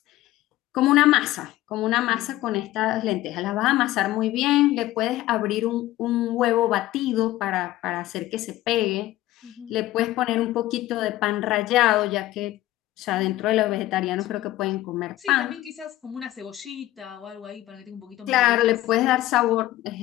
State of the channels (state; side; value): quieter; right; 15.7 dB